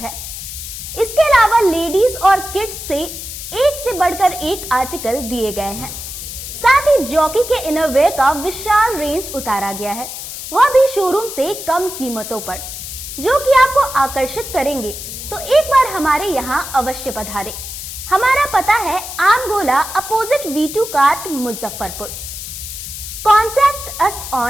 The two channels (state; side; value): noise; left; hiss, 9 dB below the sound